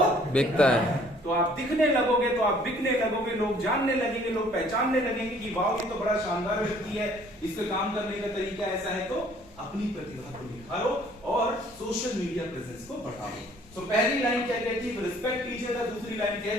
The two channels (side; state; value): both; normal; correlation 0.57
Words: बिकता है। तो आप दिखने लगोगे, तो आप बिकने लगोगे, लोग जानने लगेंगे, लोग पहचानने लगेंगे कि वाह ये तो बड़ा शानदार व्यक्ति है, इसका काम करने का तरीका ऐसा है। तो अपनी प्रतिभा को निखारो और सोशल मीडिया प्रेजेंस को बढ़ाओ। तो पहली लाइन क्या कहती है? रिस्पेक्ट कीजिएगा। दूसरी लाइन